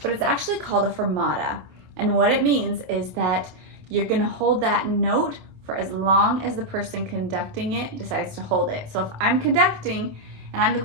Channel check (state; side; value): late; left; 27 ms